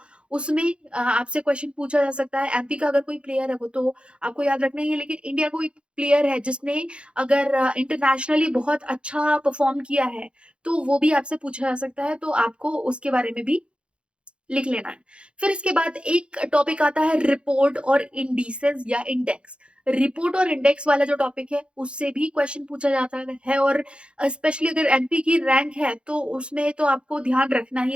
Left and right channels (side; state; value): left; late; 0.057 ms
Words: उसमें आपसे क्वेश्चन पूछा जा सकता है। एमपी का अगर कोई प्लेयर है, वो तो आपको याद रखना ही है, लेकिन इंडिया कोई प्लेयर है जिसने अगर इंटरनेशनली बहुत अच्छा परफॉर्म किया है, तो वो भी आपसे पूछा जा सकता है, तो आपको उसके बारे में भी लिख लेना है। फिर इसके बाद एक टॉपिक आता है रिपोर्ट और इंडिसेस या इंडेक्स। रिपोर्ट और इंडेक्स वाला जो टॉपिक है, उससे भी क्वेश्चन पूछा जाता है, और स्पेशली अगर एमपी की रैंक है, तो उसमें तो आपको ध्यान रखना ही